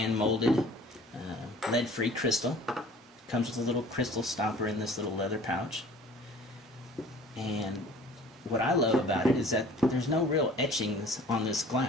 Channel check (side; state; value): both; normal; correlation 0.49